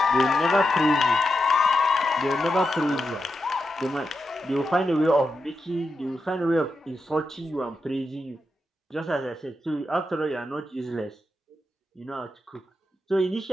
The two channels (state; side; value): normal; both; correlation 0.87